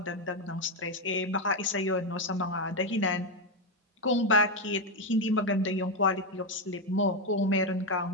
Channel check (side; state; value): both; normal; correlation 0.06